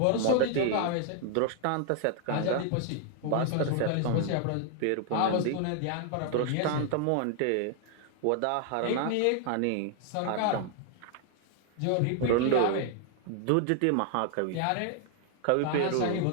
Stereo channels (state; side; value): different; both; correlation 0.00